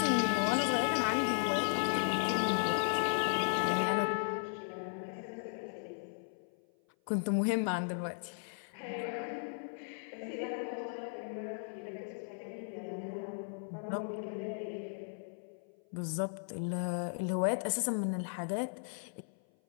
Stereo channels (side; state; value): right; silent; 54 dB below the other